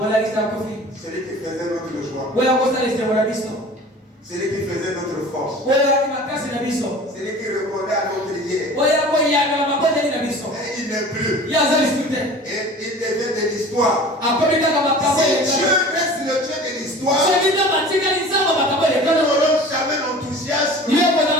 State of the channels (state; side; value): normal; both; correlation 0.41